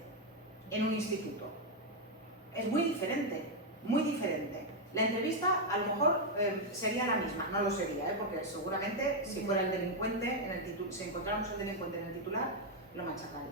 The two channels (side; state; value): both; normal; correlation 0.01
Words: en un instituto. Es muy diferente, muy diferente. La entrevista a lo mejor sería la misma, no lo sería, porque seguramente si fuera el delincuente, si encontráramos el delincuente en el titular, lo